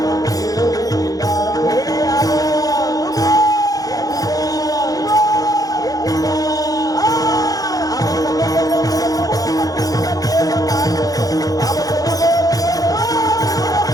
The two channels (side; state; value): right; late; 0.18 ms